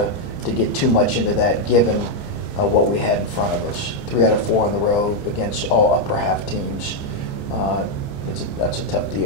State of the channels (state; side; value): late; right; 29 ms